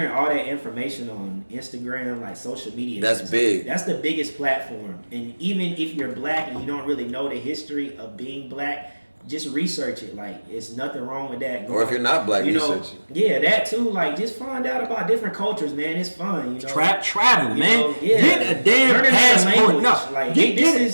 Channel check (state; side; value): inverted; both; correlation -1.00